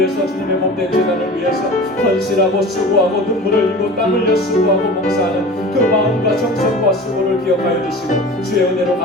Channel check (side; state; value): both; normal; correlation 0.37